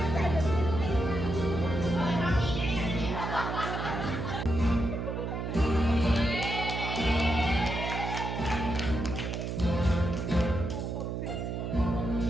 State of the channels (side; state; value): right; noise; hum, 3 dB below the sound